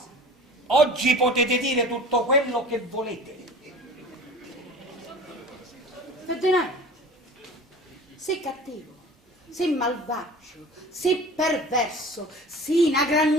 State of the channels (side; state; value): both; normal; correlation 0.40